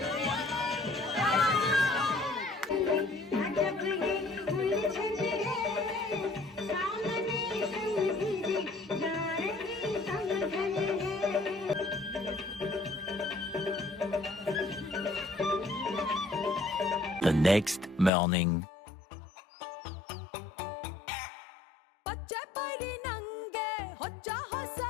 next morning. ಪಚ್ಚೆ ಪೈರಿ ನಂಗೆ ಹೊಚ್ಚ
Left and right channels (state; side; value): drops out; right; at 18.1 s